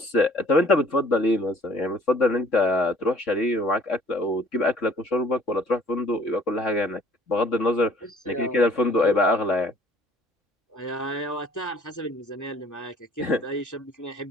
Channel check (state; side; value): normal; both; correlation 0.56